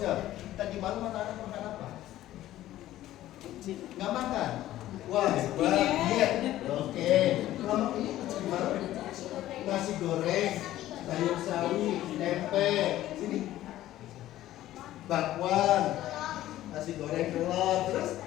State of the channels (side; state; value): right; quieter; 14.2 dB